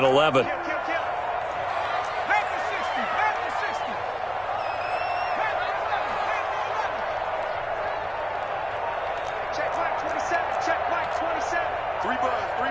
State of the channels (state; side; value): identical; both; correlation 1.00